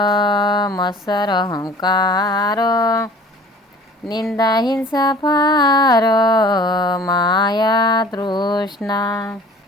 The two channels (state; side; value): normal; both; correlation 0.48